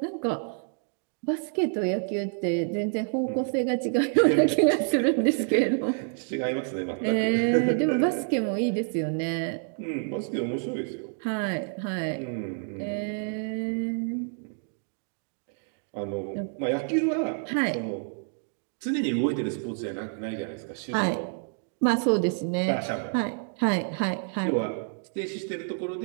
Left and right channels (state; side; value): silent; left; 59 dB below the other